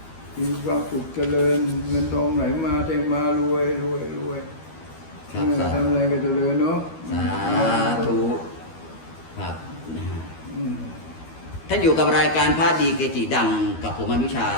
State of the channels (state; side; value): late; right; 12 ms